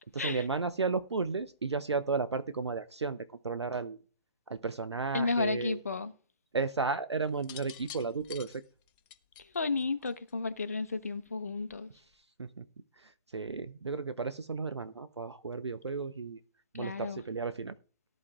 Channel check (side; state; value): both; inverted; correlation -0.49